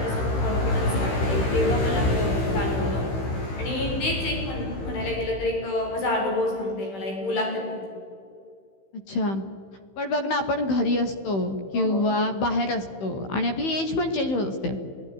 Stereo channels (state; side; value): late; right; 15 ms